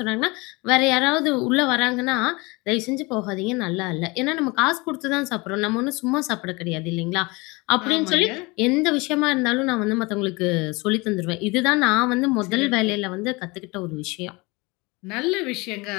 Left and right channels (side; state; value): right; quieter; 25.2 dB